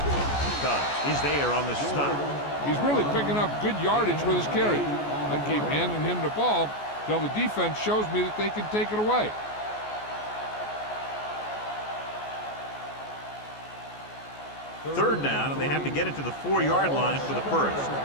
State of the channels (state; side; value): late; right; 14 ms